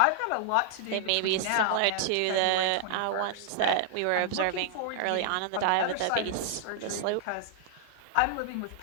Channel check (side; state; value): both; different; correlation -0.01